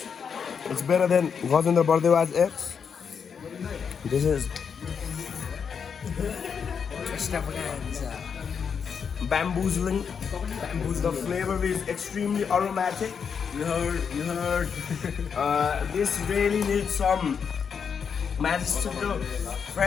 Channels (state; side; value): quieter; right; 6.6 dB